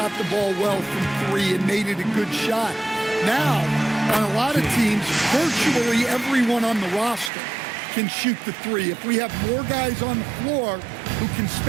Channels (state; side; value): drops out; left; at 7.3 s